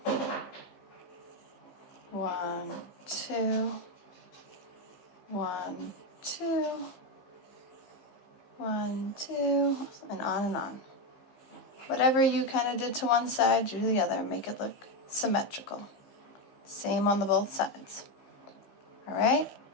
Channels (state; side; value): late; right; 15 ms